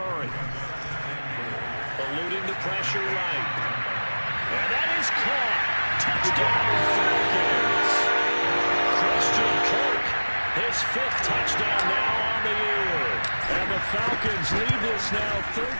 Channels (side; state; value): both; inverted; correlation -1.00